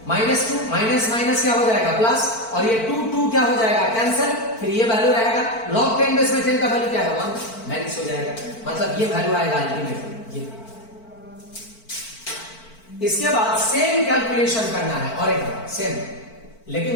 माइनस 2 माइनस माइनस क्या हो जाएगा? प्लस, और ये 2 क्या हो जाएगा? कैंसिल। फिर ये वैल्यू रहेगा log 10 बेस में 10 का वैल्यू क्या है? 1 माइनस हो जाएगा, मतलब ये वैल्यू आएगा अल्टीमेटली ये। इसके बाद सेम कैलकुलेशन करना है और एक बार सेम,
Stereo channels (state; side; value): late; right; 4.5 ms